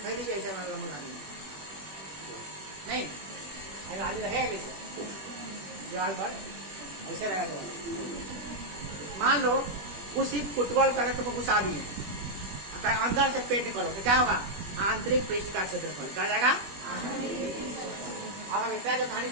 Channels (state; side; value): late; left; 21 ms